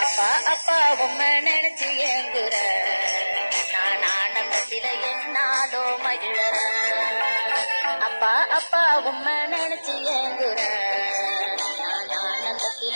அப்பா அப்பா உம்மை நினைச்சு ஏங்குற நான் ஆனந்தத்தில என்னாலோ மகிழற அப்பா அப்பா உம்மை நினைச்சு ஏங்குற நான்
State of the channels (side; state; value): both; inverted; correlation -1.00